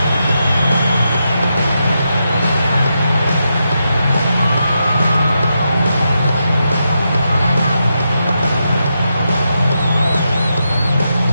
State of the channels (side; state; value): both; inverted; correlation -0.85